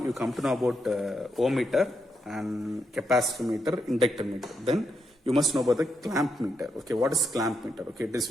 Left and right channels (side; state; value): both; normal; correlation 0.81